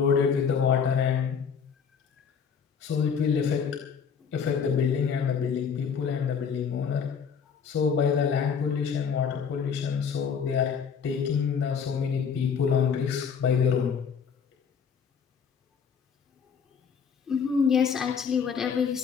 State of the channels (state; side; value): quieter; right; 6.6 dB